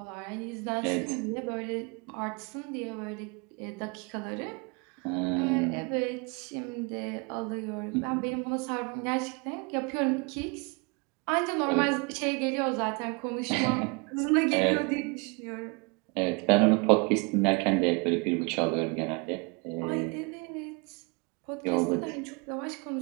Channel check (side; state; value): left; quieter; 31.1 dB